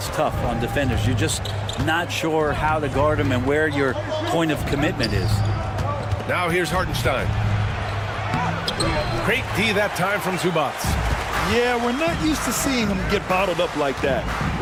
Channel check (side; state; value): both; identical; correlation 1.00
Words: tough on defenders. You're just not sure how to guard him and where your point of commitment is. Now here's Hartenstein. Great D that time from Zubac. Yeah, we're not used to seeing him get bottled up like that.